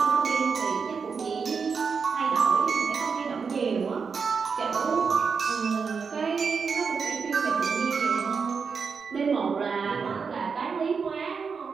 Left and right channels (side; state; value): left; quieter; 5.6 dB